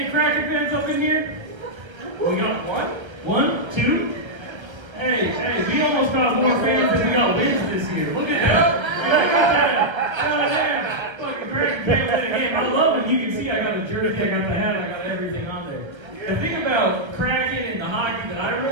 Kraken fans up in here? We got what? 1, 2? Hey, we almost got more fans than we got wins this year. Look at that. Look at that. Fucking Kraken fan win a game. I love it. You can see I got a jersey, I got the hat, I got everything on there. The thing about Kraken and the hockey that I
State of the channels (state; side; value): late; left; 1.2 ms